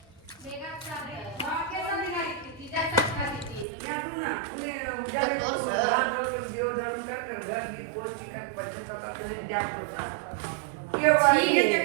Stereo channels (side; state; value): left; drops out; at 3.7 s